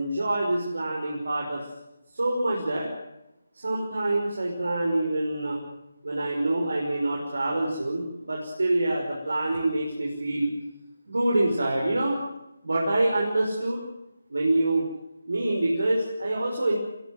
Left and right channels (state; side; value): inverted; both; correlation -0.93